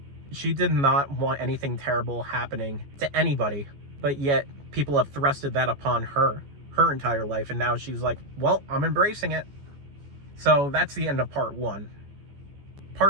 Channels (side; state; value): left; late; 14 ms